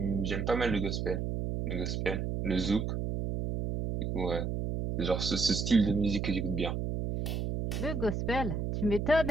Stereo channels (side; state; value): right; noise; hum, 2 dB below the sound